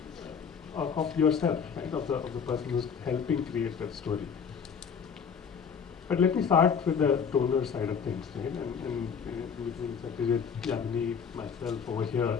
yourself, right? Of the person who's helping create that story. But let me start with the donor side of things, right? And between Satyajit, Yamini, myself over here,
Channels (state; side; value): quieter; right; 6.6 dB